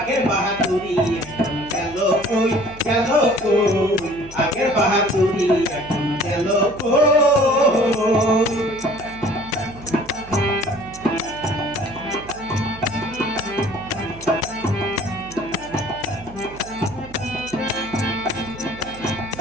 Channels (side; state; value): right; noise; hum, 18 dB below the sound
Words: বাহাদুরি এখন গেল কই, গেল কই, আগের বাহাদুরি এখন গেল কই।